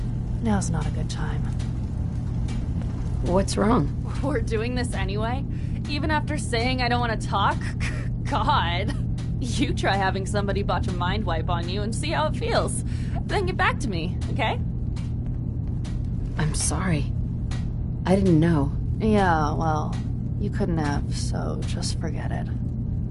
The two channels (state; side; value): identical; both; correlation 1.00